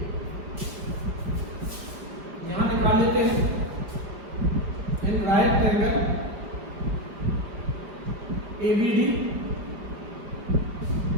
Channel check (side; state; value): left; late; 4.7 ms